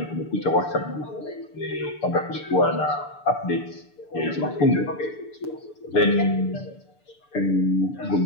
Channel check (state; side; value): late; right; 6.8 ms